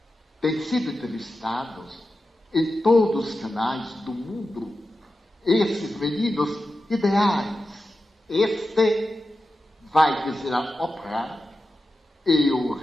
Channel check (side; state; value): both; normal; correlation 0.91